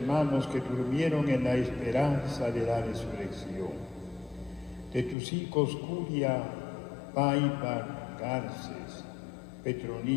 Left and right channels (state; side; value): drops out; right; at 5.2 s